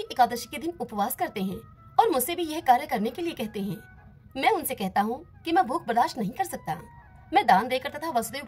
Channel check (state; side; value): identical; both; correlation 1.00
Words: एकादशी के दिन उपवास करते हैं और मुझसे भी यह कार्य करने के लिए कहते हैं। मैं उनसे कहता हूँ कि मैं भूख बर्दाश्त नहीं कर सकता। मैं दान देकर तथा वसुदेव